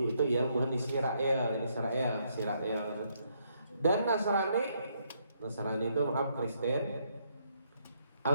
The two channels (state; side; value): inverted; both; correlation -0.73